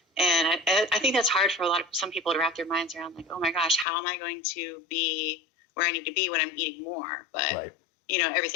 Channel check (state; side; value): drops out; right; at 3.9 s